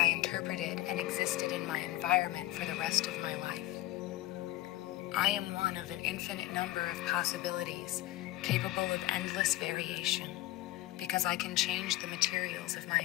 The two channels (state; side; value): quieter; right; 17.1 dB